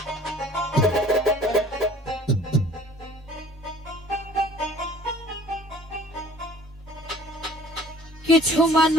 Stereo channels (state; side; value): normal; both; correlation 0.51